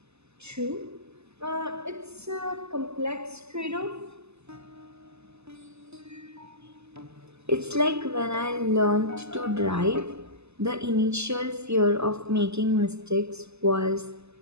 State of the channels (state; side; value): late; left; 0.80 ms